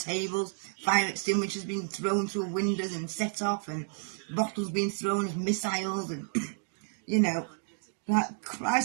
fire extinguishers being thrown through windows and set off, and bottles being thrown as missiles, and you know, like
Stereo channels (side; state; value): left; silent; 57 dB below the other